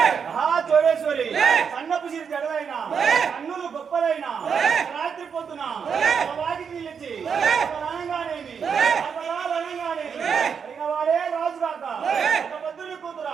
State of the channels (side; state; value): left; quieter; 6.6 dB